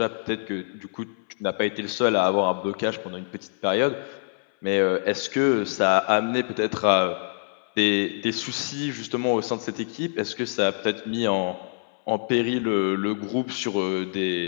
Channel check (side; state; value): right; silent; 60 dB below the other